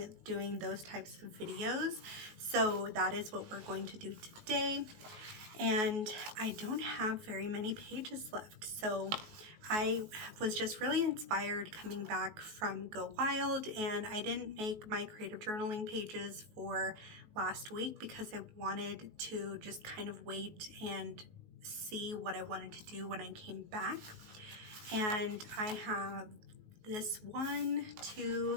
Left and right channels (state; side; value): late; left; 19 ms